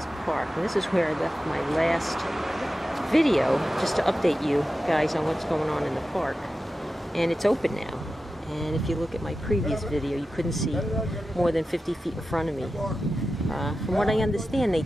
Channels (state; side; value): normal; both; correlation 0.93